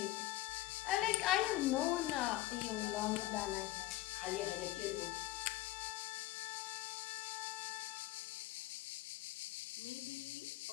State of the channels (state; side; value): quieter; right; 16.4 dB